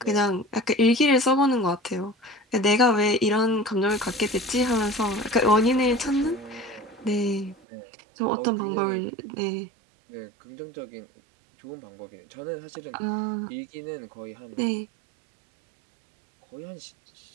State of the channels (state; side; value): drops out; left; at 7.6 s